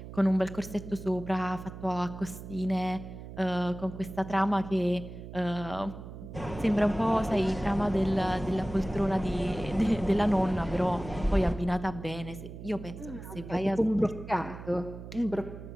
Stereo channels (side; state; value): right; noise; hum, 12 dB below the sound